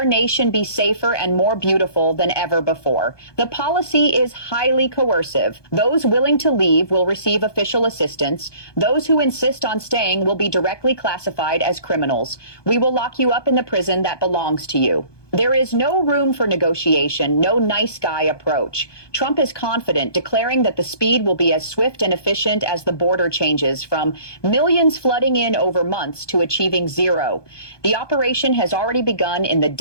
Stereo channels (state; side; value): late; right; 1.2 ms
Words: nation be safer and more beautiful than ever before. The policy is highly coercive. Those willing to leave will receive official assistance. Those who insist on staying will be directly classified as criminals. We will lock you up in the prison that belongs to you. There is no room for negotiation, no nice guy approach. Trump is confident, declaring that the speed will be as swift and efficient as the border changes, from millions flooding in over months to achieving zero. The operation has already begun in the